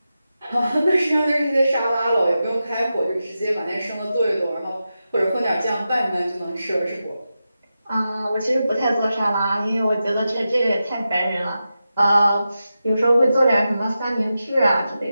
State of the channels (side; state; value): both; inverted; correlation -0.91